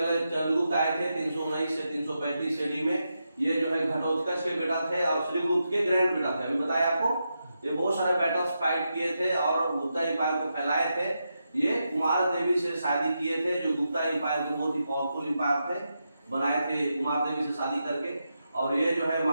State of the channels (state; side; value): inverted; both; correlation -0.86